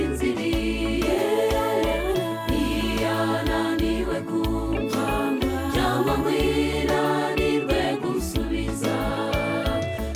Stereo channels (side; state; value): both; identical; correlation 1.00